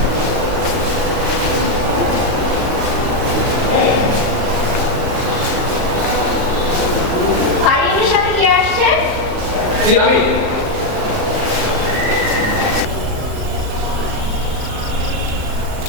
ফারিনের সাথে কে আসছে? জি আমি।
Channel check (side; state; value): left; late; 38 ms